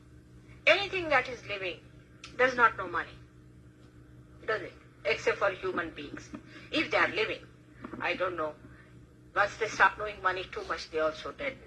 Anything that is living does not know money, does it? Except for human beings. If they are living, I don't know. Once they start knowing money too much, they also dead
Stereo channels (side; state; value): both; identical; correlation 1.00